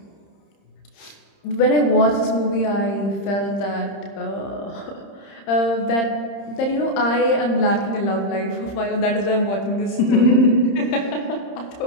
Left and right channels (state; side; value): late; right; 30 ms